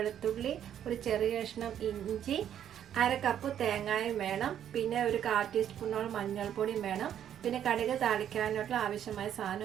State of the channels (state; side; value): quieter; left; 10.0 dB